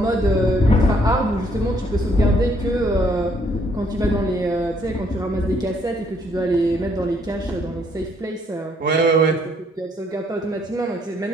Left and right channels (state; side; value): normal; both; correlation 0.68